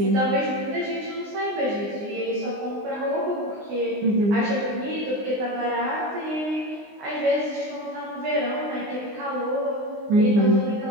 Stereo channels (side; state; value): left; late; 19 ms